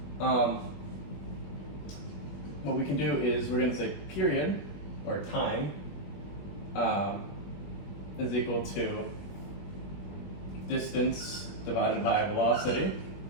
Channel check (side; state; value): right; late; 21 ms